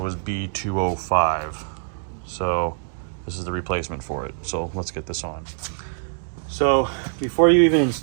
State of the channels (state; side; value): silent; left; 63 dB below the other